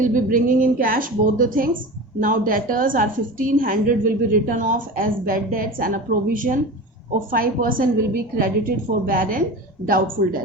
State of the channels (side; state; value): both; normal; correlation 0.31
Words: will be bringing in cash, both the things. Now debtors are 1500 will be written off as bad debts, and a provision of 5% will be credited for bad and doubtful